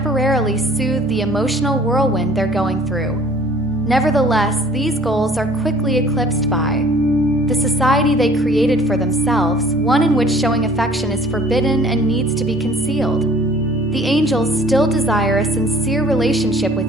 soothe the emotional whirlwind they're going through. Nevertheless, these goals are quickly eclipsed by the society they created for themselves, one in which showing affection is forbidden and needs to be concealed. The angels still desire a sincere relationship with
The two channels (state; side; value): noise; left; rumble, 26 dB below the sound